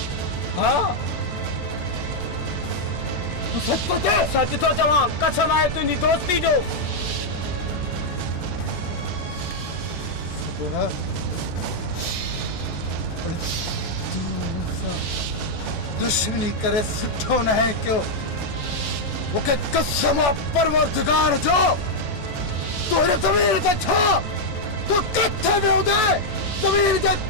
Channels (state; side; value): late; right; 14 ms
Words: हाँ सच तो थे। सच तो चवा कसम आहे तुझी दोस्ती जो। दुश्मनी करे सुठो न है क्यों मुखे कसम परवरदिगार जो तोरे ज़मीर ते छा तू किथे में होदे ज़मीर जे